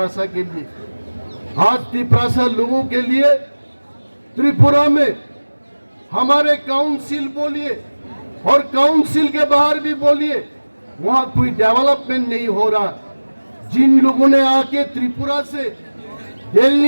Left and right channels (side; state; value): both; inverted; correlation -1.00